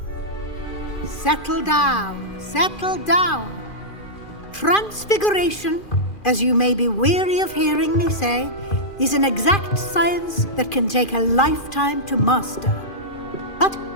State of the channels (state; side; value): late; right; 2.4 ms